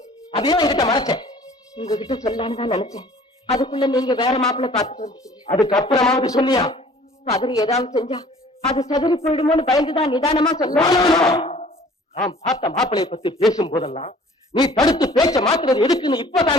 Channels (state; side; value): normal; both; correlation 0.51